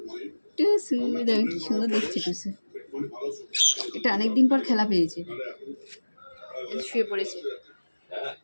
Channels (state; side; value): inverted; both; correlation -1.00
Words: টুসু, দেখো কি সুন্দর দেখছে টুসু। এটা অনেকদিন পর খেলা পেয়েছে, শুয়ে পড়েছে।